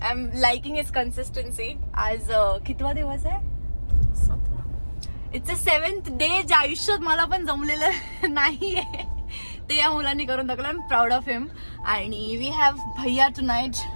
am liking his consistency. आज कितवा दिवस आहे? इट्स अ 7th डे जे आयुष्यात मला पण जमलेलं नाहीये ते या मुलांनी करून दाखवलं. I am proud of him. आणि वी हॅव भैया tonight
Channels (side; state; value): both; inverted; correlation -1.00